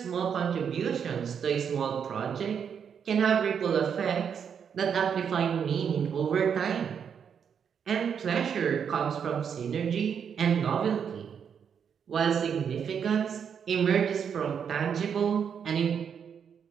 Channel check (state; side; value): quieter; left; 7.4 dB